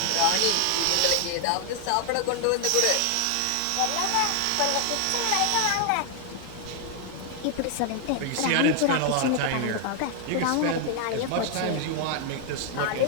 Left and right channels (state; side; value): different; both; correlation 0.00